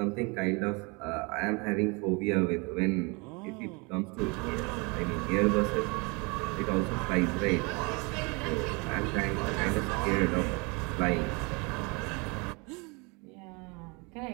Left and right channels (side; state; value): left; quieter; 29.5 dB